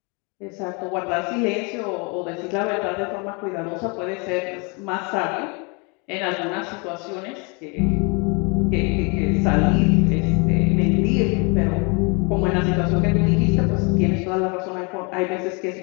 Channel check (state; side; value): quieter; right; 32.1 dB